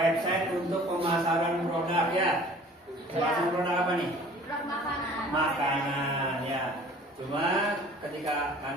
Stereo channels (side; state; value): both; normal; correlation 0.49